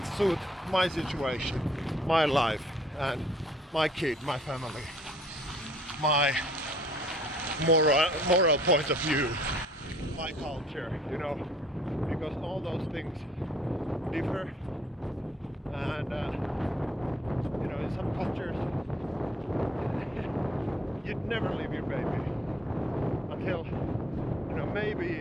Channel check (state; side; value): normal; both; correlation 0.60